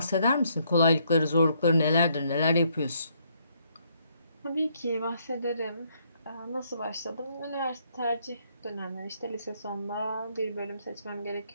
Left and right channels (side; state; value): both; inverted; correlation -0.71